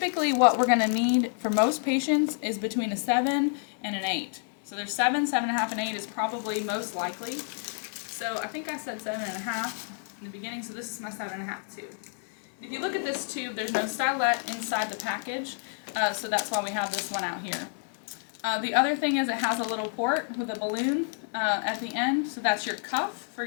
what we're going to need for most patients is between a 7 and an 8. So there's 7, 7.5, and 8 is probably most likely. So I think I said 7.5 in the beginning, so this is my 7.5 tube. If you look at this tube, there's no stylet inside the package, so that's why we have this one out here. The other thing is it has a little port with a balloon at the end, so that's your cuff for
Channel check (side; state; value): right; silent; 57 dB below the other